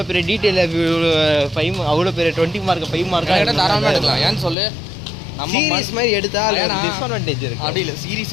பெரிய டீட்டெயில் 5 அவ்வளோ பெரிய 20 மார்க் 5 மார்க் தாராளமாக எடுக்கலாம். ஏன்னு சொல்லு நம்ம சீரிஸ் மாதிரி எடுத்தால் டிஸ்அட்வான்டேஜ் இருக்குது. அப்படி இல்லை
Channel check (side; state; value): right; drops out; at 4.5 s